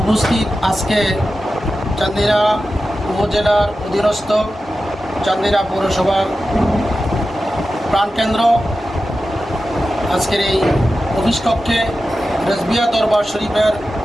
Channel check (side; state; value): both; normal; correlation 0.92